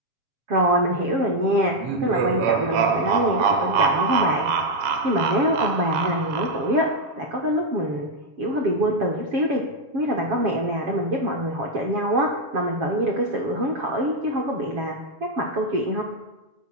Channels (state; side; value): late; left; 7.3 ms